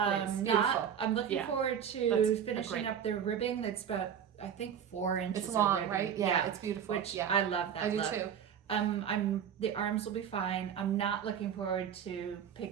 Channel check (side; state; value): left; quieter; 8.4 dB